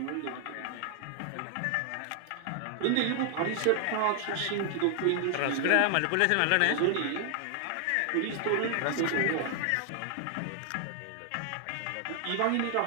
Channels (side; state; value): both; different; correlation 0.00